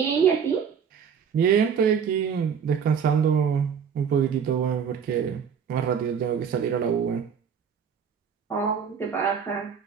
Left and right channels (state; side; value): quieter; left; 7.1 dB